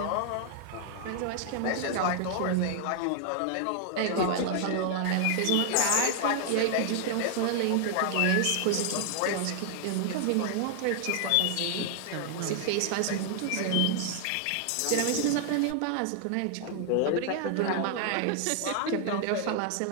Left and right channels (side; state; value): both; different; correlation 0.00